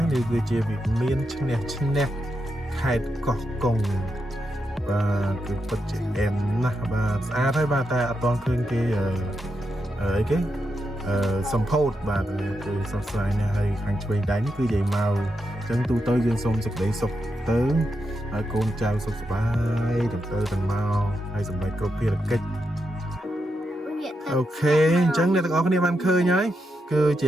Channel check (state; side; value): normal; both; correlation 0.85